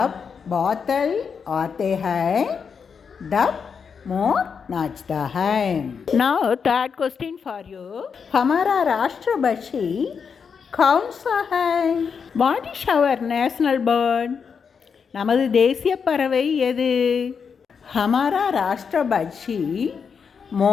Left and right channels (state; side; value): quieter; right; 6.2 dB